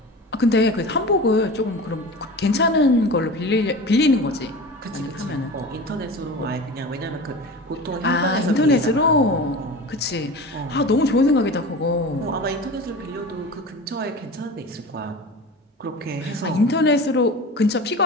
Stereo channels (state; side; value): normal; both; correlation 0.33